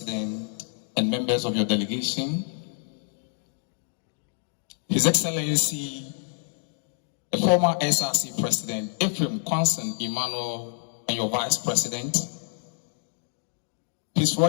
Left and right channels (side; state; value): right; silent; digital silence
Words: and members of your delegation, His Excellency the former SRC President Ephraim Kwanson Emmanuel and your Vice President, His